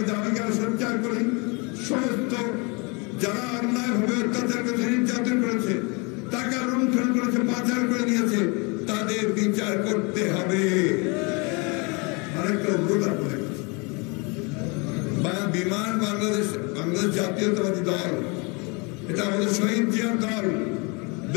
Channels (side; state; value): right; quieter; 30.4 dB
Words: দাবিকে সঞ্চার করি। সমস্ত যারা অন্যায়ভাবে অত্যাচার করেছে, নির্যাতন করেছে, টাকা লুণ্ঠন করেছে, পাচার করে নিয়েছে, তাদের বিচার করতে হবে। আরেকটা অনুরোধ আপনাদের কাছে, বিমান বাংলাদেশ জাতীয়তাবাদী দল, এটা আমাদের শহীদ জিয়ার দল,